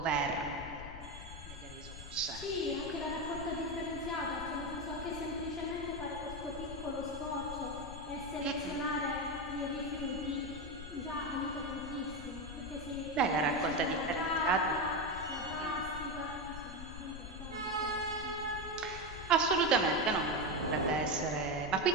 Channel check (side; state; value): left; noise; rumble, 11 dB below the sound